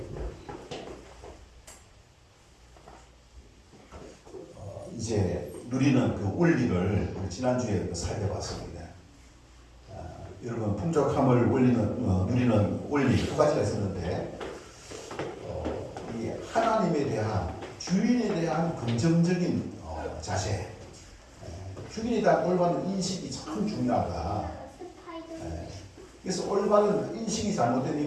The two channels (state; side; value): identical; both; correlation 1.00